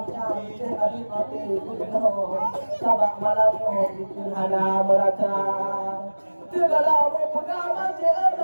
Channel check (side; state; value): both; inverted; correlation -1.00